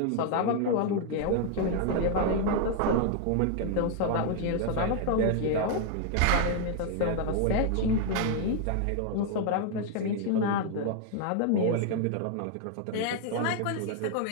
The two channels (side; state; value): both; different; correlation 0.00